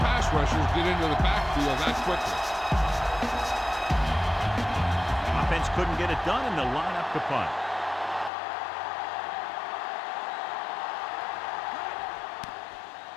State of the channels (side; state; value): right; drops out; at 8.3 s